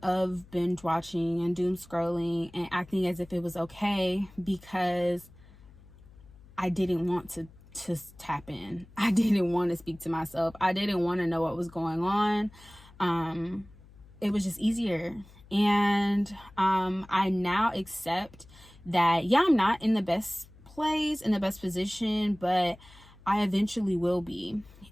binge watching and doom scrolling and acting as if it was okay, because I didn't want to tap in. I didn't want to speak to myself. I didn't want to know what was going on. It was just easier. And I now accept that, yeah, I'm not in the best place, in the best position, but I eventually will be.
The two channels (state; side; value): noise; left; hum, 23 dB below the sound